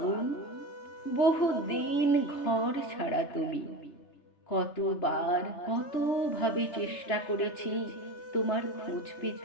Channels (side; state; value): right; late; 3.3 ms